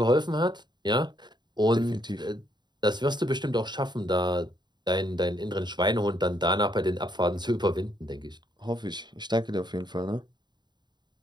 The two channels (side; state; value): left; late; 0.21 ms